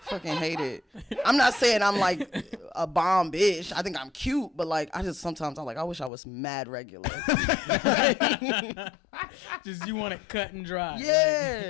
hate it. I'm not saying I'm like a bomb bitch. I think I'm cute, but like sometimes I'm like, I wish I was mad regular. Just you want it cut and dry.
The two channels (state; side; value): drops out; right; at 6.1 s